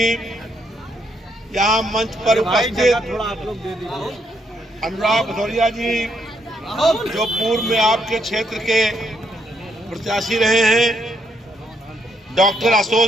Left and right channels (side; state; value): both; normal; correlation 0.75